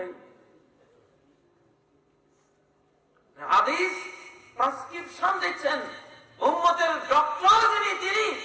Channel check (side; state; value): both; identical; correlation 1.00